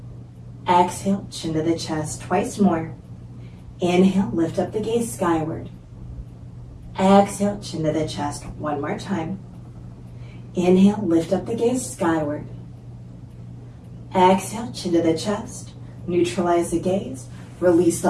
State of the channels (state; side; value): identical; both; correlation 1.00